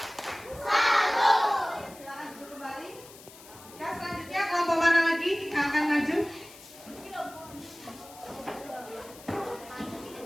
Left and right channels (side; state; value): left; noise; hiss, 19 dB below the sound